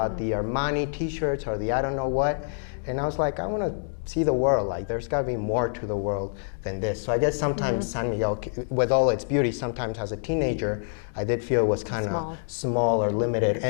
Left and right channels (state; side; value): silent; right; digital silence